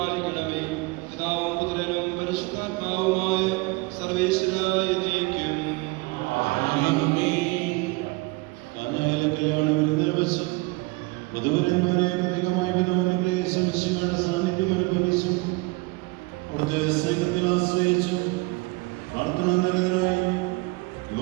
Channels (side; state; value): left; quieter; 25.1 dB